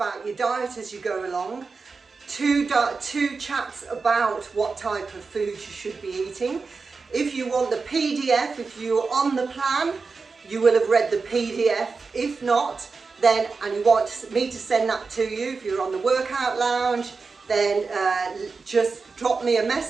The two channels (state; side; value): quieter; left; 4.5 dB